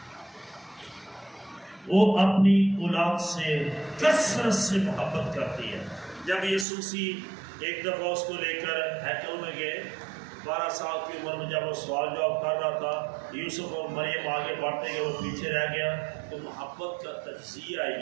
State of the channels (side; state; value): left; drops out; at 6.7 s